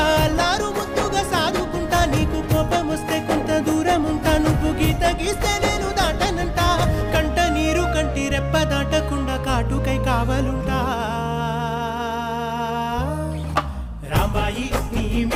అల్లారు ముద్దుగా సాదుకుంటా నీకు కోపం వస్తే కొంత దూరం ఉంటా నువ్వు గీత గీస్తే నేను దాటనంట కంట నీరు కంటి రెప్ప దాటకుండా కాటుకై కావలుంటా రాంబాయి నీ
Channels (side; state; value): both; identical; correlation 1.00